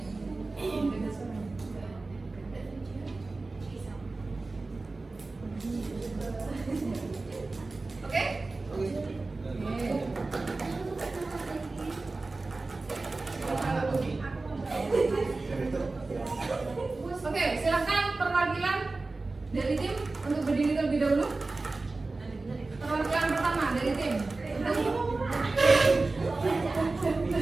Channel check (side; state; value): left; quieter; 3.4 dB